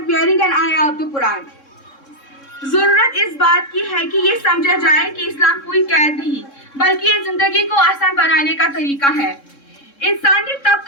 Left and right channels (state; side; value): late; right; 3.7 ms